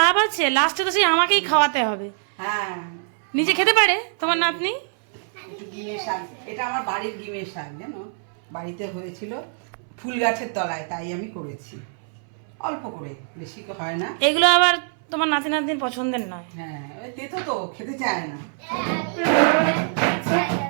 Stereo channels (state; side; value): silent; left; 63 dB below the other